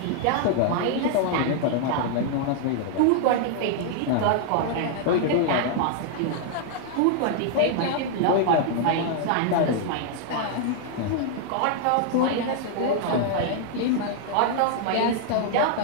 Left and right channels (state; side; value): different; both; correlation -0.01